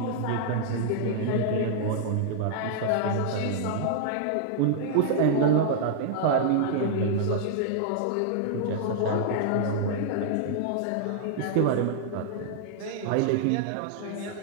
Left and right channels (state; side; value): different; both; correlation -0.01